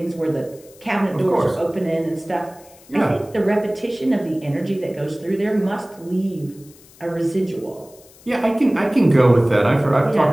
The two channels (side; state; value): left; noise; hiss, 25 dB below the sound